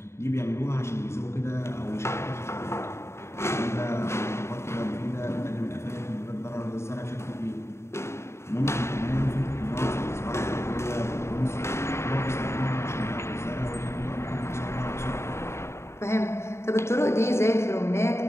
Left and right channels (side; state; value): right; late; 0.13 ms